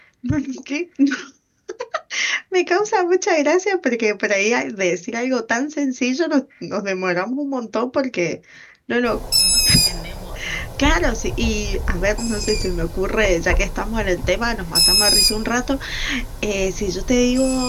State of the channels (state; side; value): identical; both; correlation 1.00